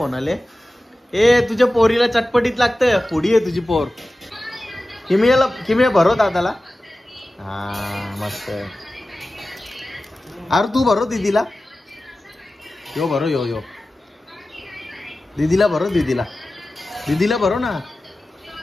आले. ए तुझ्या पोरीला चटपटीत लागतं. फोडी आहे तुझी पोर. किमया भरो दादाला. हा मस्त. अरे तू भरो दीदीला. यो भरो यो दीदीला भरो. दीदीला भरो ना.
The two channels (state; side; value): normal; both; correlation 0.95